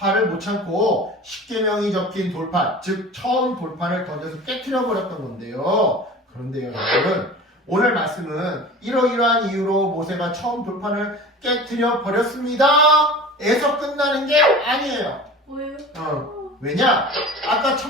못 참고 십계명이 적힌 돌판, 즉 처음 돌판을 던져서 깨트려 버렸던 건데요. 그런데요, 여러분, 오늘 말씀은 이러이러한 이유로 모세가 처음 돌판을 깨트려 버렸습니다 에서 끝나는 게 아니에요. 뭐예요? 왜냐? 아까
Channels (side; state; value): both; normal; correlation 0.37